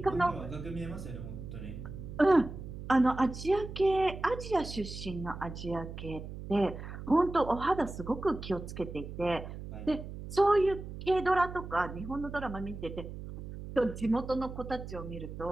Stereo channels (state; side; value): noise; right; hum, 10 dB below the sound